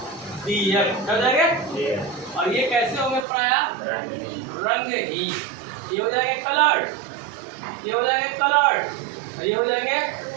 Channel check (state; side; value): drops out; left; at 3.2 s